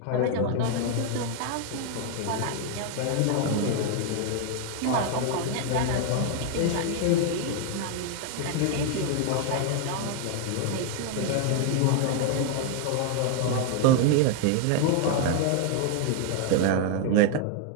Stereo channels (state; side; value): different; both; correlation 0.00